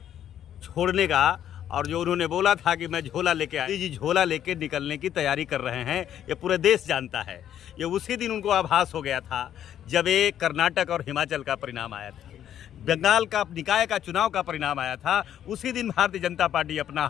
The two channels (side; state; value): right; quieter; 10.4 dB